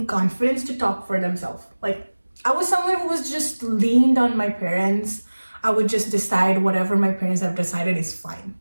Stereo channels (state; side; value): inverted; both; correlation -1.00